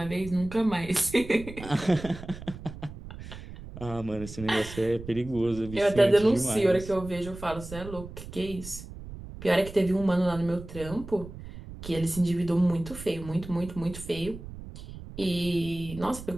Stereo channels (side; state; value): right; noise; rumble, 13 dB below the sound